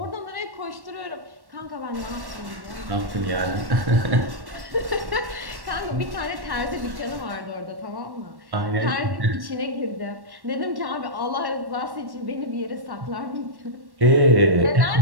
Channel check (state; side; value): late; left; 1.1 ms